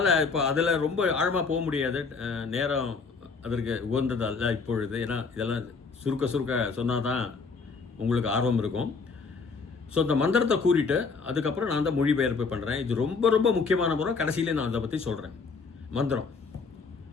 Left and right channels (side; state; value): right; quieter; 4.7 dB